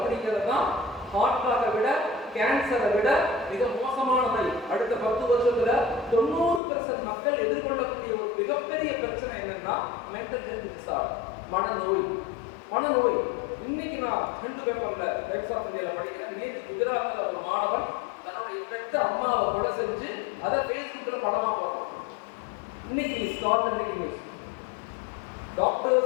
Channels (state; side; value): drops out; right; at 6.6 s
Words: தான் ஹார்ட்டாக விட, கேன்சரை விட மிக மோசமான நோய். அடுத்த 10 வருஷத்துல 90% மக்கள் எதிர்கொள்ளக்கூடிய ஒரு மிகப்பெரிய பிரச்சனை என்னன்னா மென்டல் ஹெல்த் டிசார்டர், மனநோய். இன்னைக்கு நான் ஹிந்து பேப்பர்ல டைம்ஸ் ஆஃப் இந்தியால படிக்கிறேன். நேற்று குஜராத்ல ஒரு மாணவன் ஆத்தென்டிக் நியூஸ்.